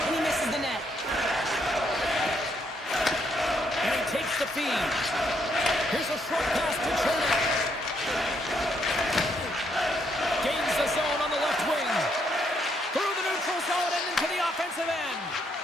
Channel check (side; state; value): both; normal; correlation 0.74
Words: he misses the net. And he takes the feed. Here's a short pass to Chernak. Gains the zone on the left wing. Through the neutral zone and into the offensive end.